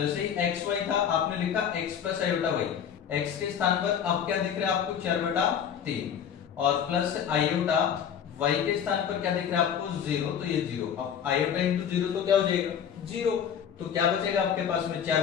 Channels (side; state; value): right; quieter; 8.4 dB